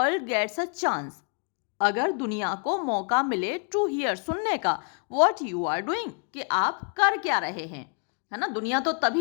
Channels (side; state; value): right; quieter; 39.5 dB